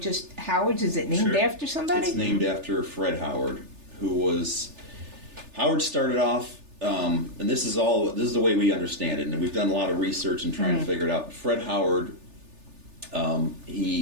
Howard's? Is it named Sure. after somebody? It's named after Fred Howard, Howard started off, and this is the way we understand it, and we've done a lot of research and trying to figure it out. Fred Howard,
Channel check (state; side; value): late; left; 3.4 ms